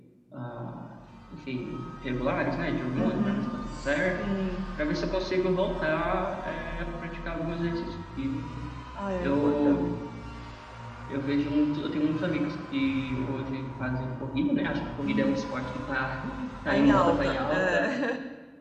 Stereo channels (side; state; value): both; identical; correlation 1.00